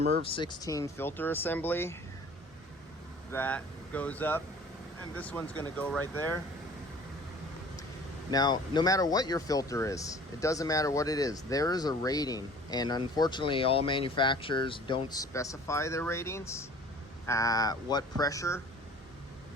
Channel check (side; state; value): both; normal; correlation 0.47